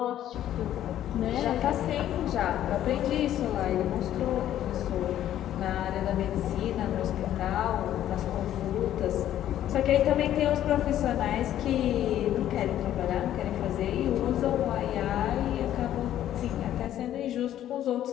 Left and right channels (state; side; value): quieter; right; 11.9 dB